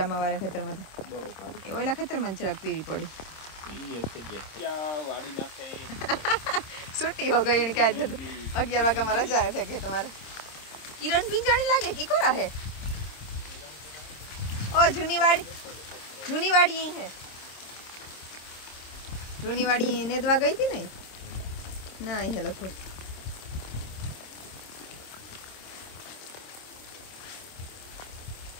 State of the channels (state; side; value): late; right; 26 ms